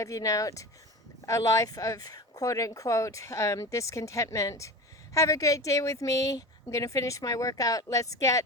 out a life of quote unquote discontentment. Have a great day with me. I'm going to finish my workout. Let's get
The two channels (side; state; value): both; normal; correlation 0.30